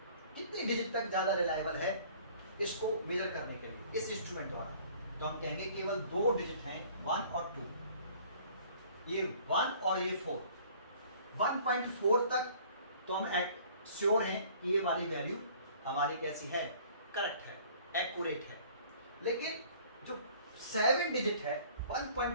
कितनी डिजिट तक ज्यादा रिलायबल है इसको मेजर करने के लिए इस इंस्ट्रूमेंट द्वारा? तो हम कहेंगे केवल 2 डिजिट हैं, 1 और 2, ये 1 और ये 4। 1.4 तक तो हम श्योर हैं कि ये वाली वैल्यू हमारी कैसी है, करेक्ट है, एक्यूरेट है। लेकिन जो 7 डिजिट है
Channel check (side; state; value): both; inverted; correlation -0.53